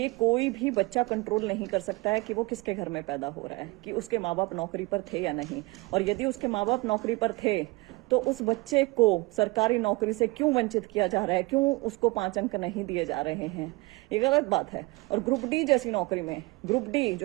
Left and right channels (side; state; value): left; quieter; 24.1 dB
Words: कोई भी बच्चा कंट्रोल नहीं कर सकता है कि वो किसके घर में पैदा हो रहा है, कि उसके माँ बाप नौकरी पर थे या नहीं, और यदि उसके माँ बाप नौकरी पर थे तो उस बच्चे को सरकारी नौकरी से क्यों वंचित किया जा रहा है, क्यों उसको 5 अंक नहीं दिए जा रहे हैं। ये गलत बात है। और ग्रुप डी जैसी नौकरी में, ग्रुप डी